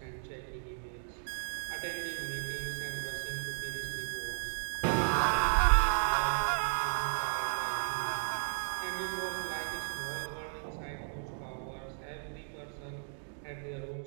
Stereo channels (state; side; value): silent; left; digital silence